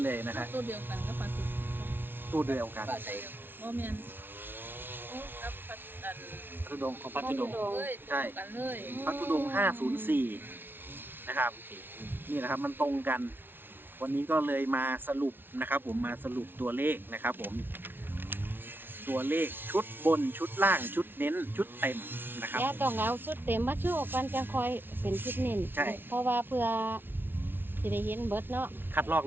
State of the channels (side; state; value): left; late; 0.10 ms